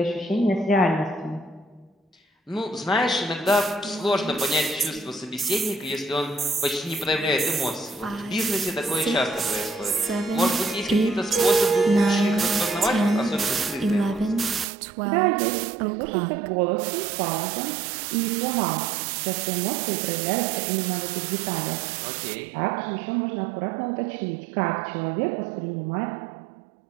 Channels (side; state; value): left; drops out; at 14.7 s